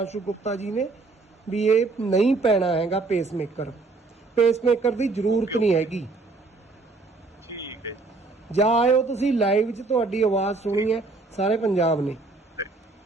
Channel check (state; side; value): quieter; left; 3.6 dB